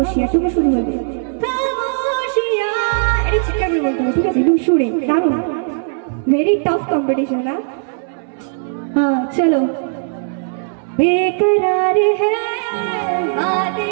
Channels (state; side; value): silent; left; 67 dB below the other